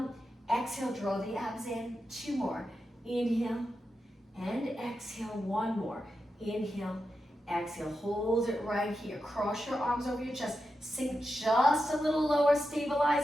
Exhale, draw the abs in. 2 more. Inhale and exhale. 1 more. Inhale, exhale. Hold it right here. Cross your arms over your chest. Sink just a little lower.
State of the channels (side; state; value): both; normal; correlation 0.89